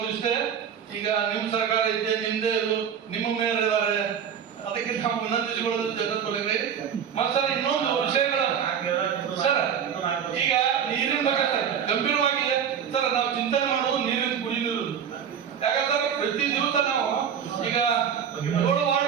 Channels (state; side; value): quieter; left; 8.0 dB